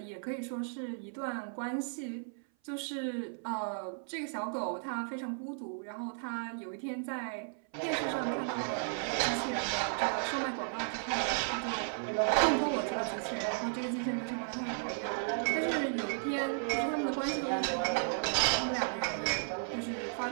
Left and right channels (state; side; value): silent; left; 55 dB below the other